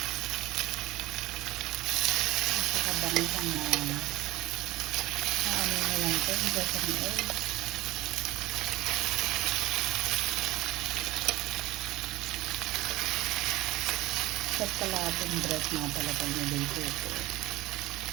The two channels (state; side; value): quieter; left; 18.5 dB